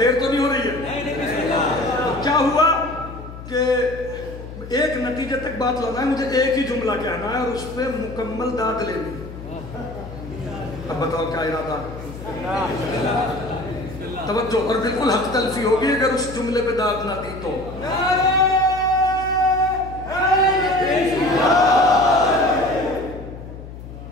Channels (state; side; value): noise; left; hum, 13 dB below the sound